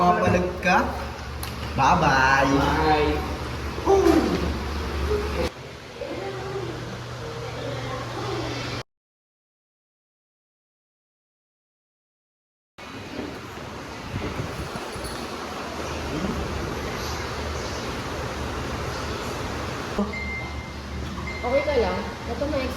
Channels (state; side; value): identical; both; correlation 1.00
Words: ka? Bye-bye. Bye. Okay ka lang? Ito may